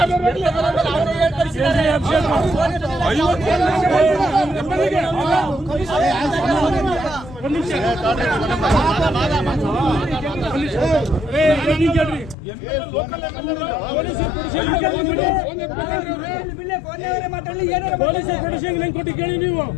ಕೊಟ್ಟು ಕೇಳಿ ನೀವು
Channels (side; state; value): right; drops out; at 12.4 s